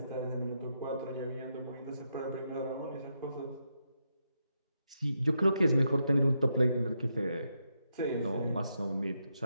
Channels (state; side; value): inverted; both; correlation -0.82